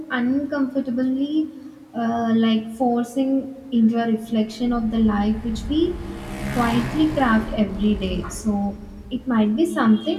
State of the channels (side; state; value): both; identical; correlation 1.00